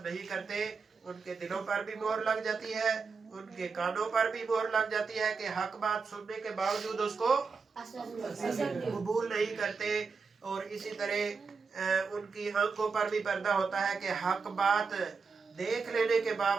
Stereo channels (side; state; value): left; quieter; 5.0 dB